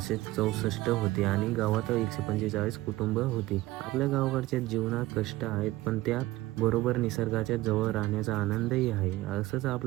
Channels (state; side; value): quieter; left; 17.8 dB